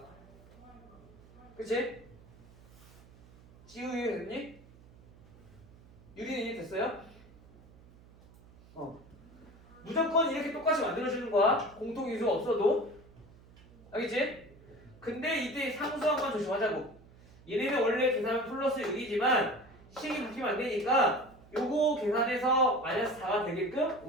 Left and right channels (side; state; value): right; noise; hum, 23 dB below the sound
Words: 그치? 지우 됐니? 유리는 이해 됐어요? 무조건 이렇게 똑같이 만들어주는 거야. 공통인수가 없어도. 알겠지? 근데 이때 상수항만 조심하자고. 얘네는 원래 계산은 플러스 6이지만 식이 바뀌면 안 되니까 요거 계산해서 마이너스 4가 되게끔